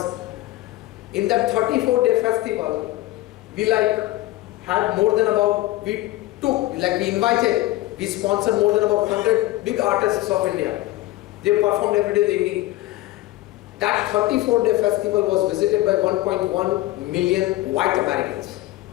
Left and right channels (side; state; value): right; quieter; 17.2 dB